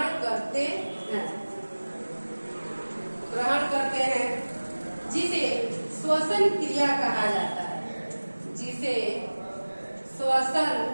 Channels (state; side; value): inverted; both; correlation -1.00